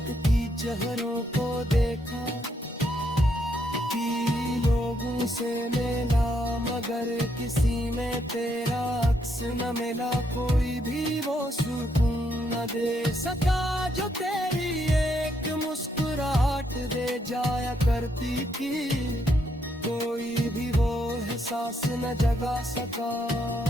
की चेहरों को देखा कि लोगों से मिला, मगर किसी में तेरा अक्स न मिला। कोई भी वो सुकून न दे सका जो तेरी एक मुस्कुराहट दे जाया करती थी। कोई भी वो एहसास न जगा सका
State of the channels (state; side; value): normal; both; correlation 0.75